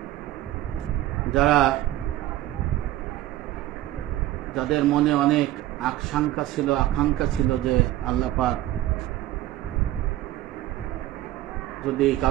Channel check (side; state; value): left; quieter; 14.8 dB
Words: যাদের মনে অনেক আকাঙ্ক্ষা ছিল যে আল্লাহ পাক যদি